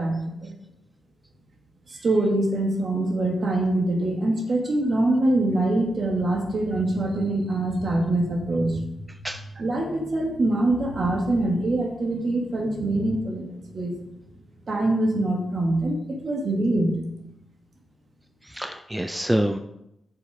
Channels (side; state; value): both; normal; correlation 0.86